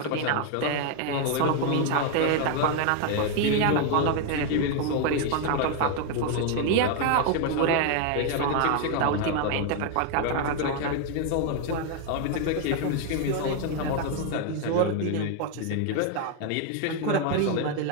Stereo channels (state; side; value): different; both; correlation 0.00